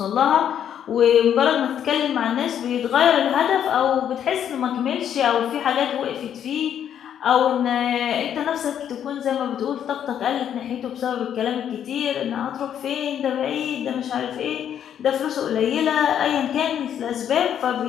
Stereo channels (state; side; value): quieter; right; 9.4 dB